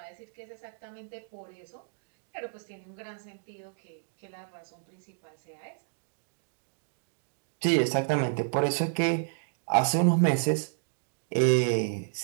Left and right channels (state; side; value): silent; left; digital silence